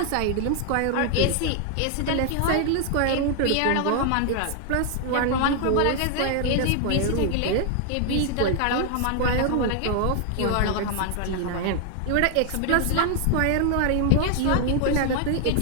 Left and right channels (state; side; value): different; both; correlation 0.00